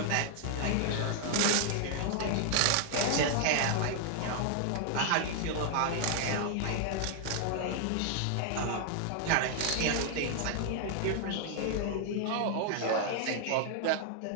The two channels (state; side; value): different; both; correlation 0.00